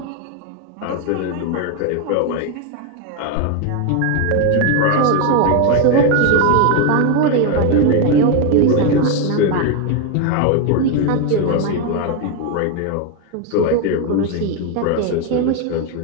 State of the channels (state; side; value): different; both; correlation 0.02